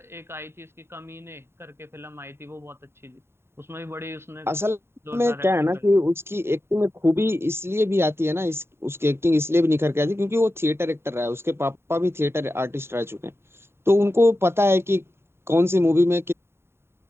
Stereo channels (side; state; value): left; late; 0.12 ms